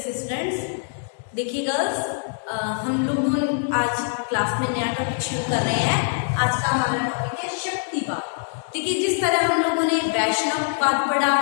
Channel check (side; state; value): right; silent; digital silence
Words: students. देखिए girls, हम लोग आज class में नया टॉपिक शुरू कर रहे हैं। आज का हमारा टॉपिक है शक्तिवाद। देखिए, जिस तरह हम लोगों ने वैष्णववाद पढ़ा,